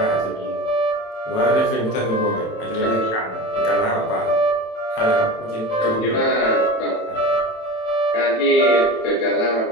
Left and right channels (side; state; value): right; late; 27 ms